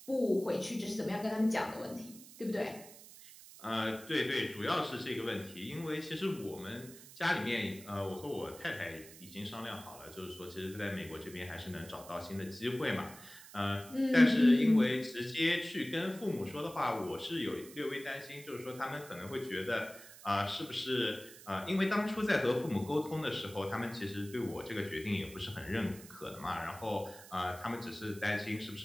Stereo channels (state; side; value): noise; right; hiss, 17 dB below the sound